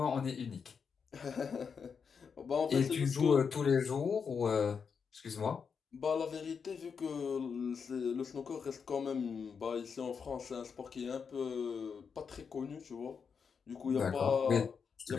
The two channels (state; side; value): quieter; right; 6.1 dB